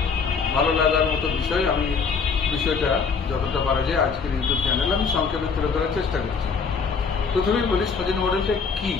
ভালো লাগার মতো বিষয়। আমি বিষয়টা যতটা পারা যায় আজকের ইউটিউব চ্যানেলে আমি সংক্ষেপে তুলে ধরার চেষ্টা করছি। প্রথমেই বলি সজনী মডেলটা কি।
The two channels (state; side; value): quieter; right; 5.5 dB